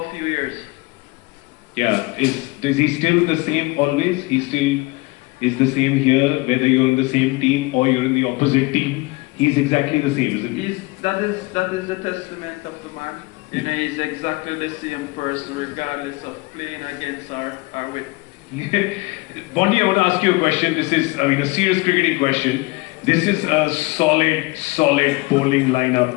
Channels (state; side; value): quieter; right; 23.8 dB